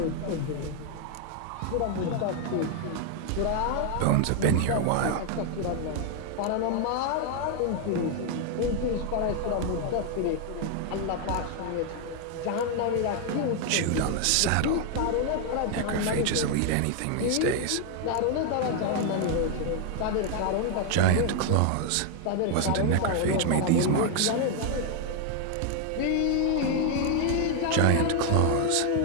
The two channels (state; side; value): different; both; correlation 0.00